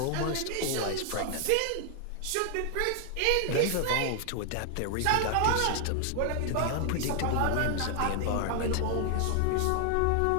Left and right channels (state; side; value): different; both; correlation 0.00